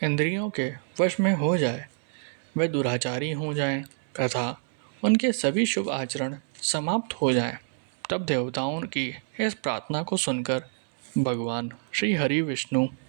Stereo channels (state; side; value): silent; left; 60 dB below the other